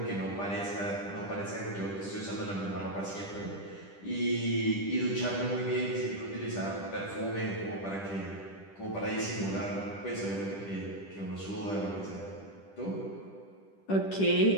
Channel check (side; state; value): right; late; 10 ms